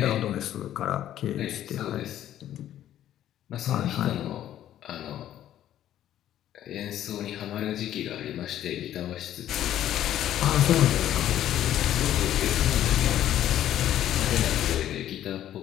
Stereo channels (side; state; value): right; quieter; 11.9 dB